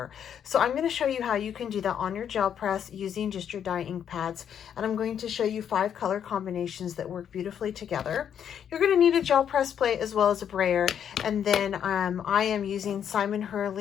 So I'm going to show you how you can do that on your gel press using just your dye ink pads, and I'm going to show you 5 color combinations that work beautifully together. You're going to need a gel press plate as well as a brayer, and then I am using Simon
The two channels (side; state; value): right; quieter; 8.8 dB